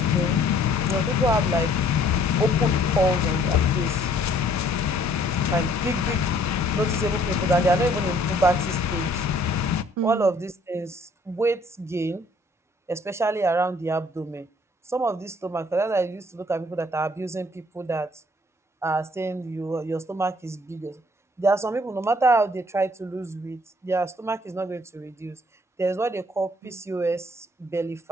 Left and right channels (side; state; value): both; normal; correlation 0.60